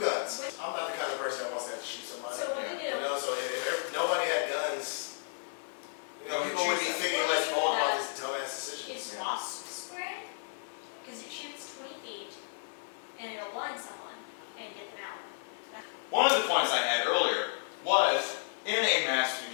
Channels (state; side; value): silent; right; 56 dB below the other